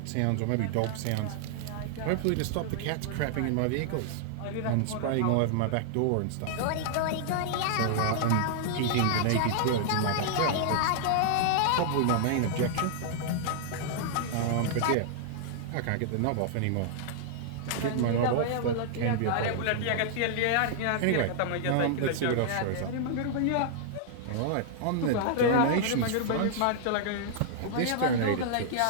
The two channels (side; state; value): both; different; correlation -0.01